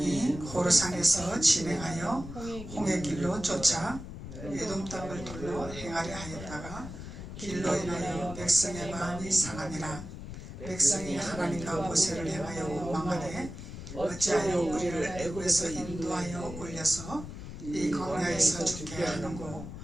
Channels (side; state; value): left; noise; rumble, 10 dB below the sound